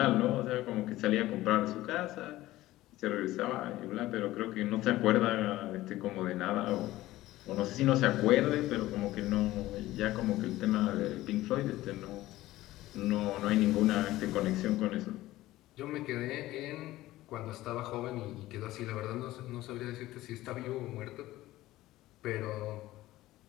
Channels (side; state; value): right; quieter; 16.5 dB